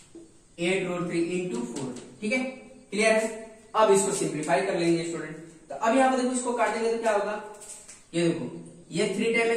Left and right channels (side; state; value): both; identical; correlation 1.00